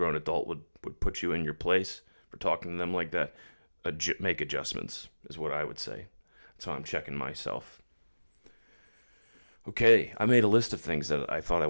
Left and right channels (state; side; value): inverted; both; correlation -1.00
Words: adult would put you in your place for talking to them like that, make adjustments is what I would say. So I'm checking myself. Okay, I made a list of things that I thought I